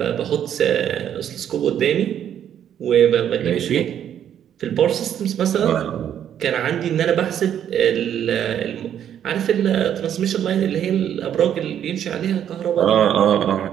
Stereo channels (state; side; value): quieter; left; 9.8 dB